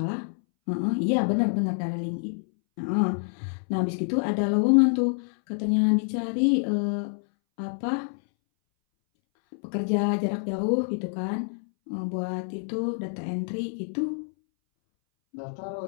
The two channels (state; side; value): silent; right; 60 dB below the other